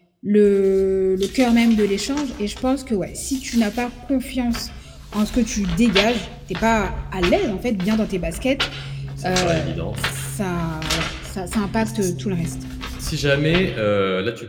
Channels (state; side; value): identical; both; correlation 1.00